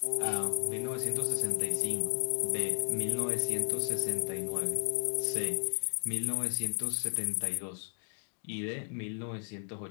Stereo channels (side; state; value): right; silent; 55 dB below the other